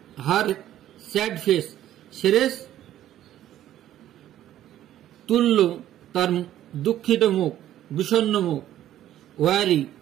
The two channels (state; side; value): quieter; left; 12.4 dB